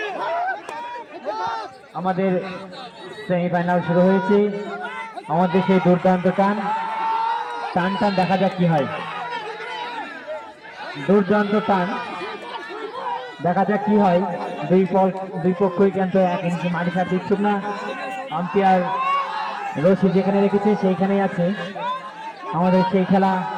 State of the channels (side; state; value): both; identical; correlation 1.00